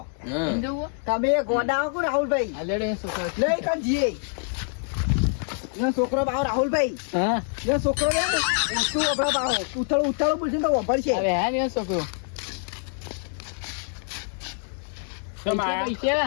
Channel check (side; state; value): right; silent; 57 dB below the other